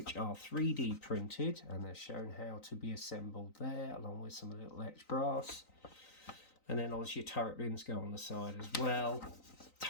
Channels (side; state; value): right; late; 3.9 ms